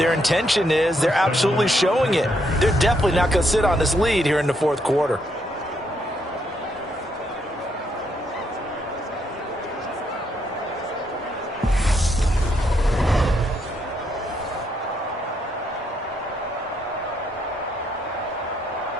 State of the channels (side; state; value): both; normal; correlation 0.75